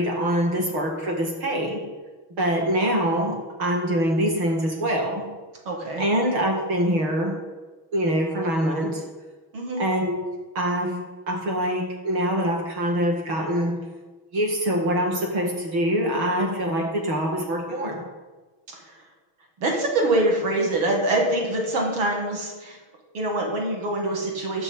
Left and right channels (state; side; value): late; left; 6.2 ms